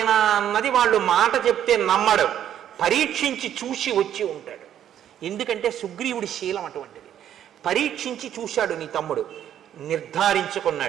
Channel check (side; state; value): left; quieter; 10.4 dB